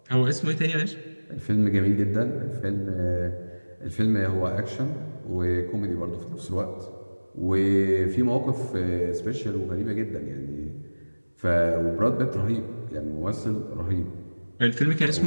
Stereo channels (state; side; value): inverted; both; correlation -1.00